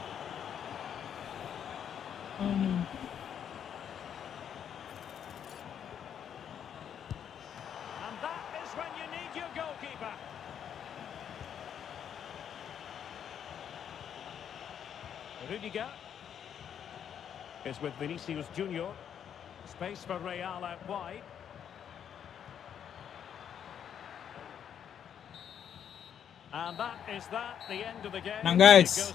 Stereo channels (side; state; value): right; quieter; 8.7 dB